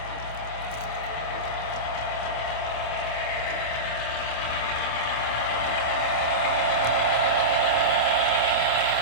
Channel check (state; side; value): late; right; 26 ms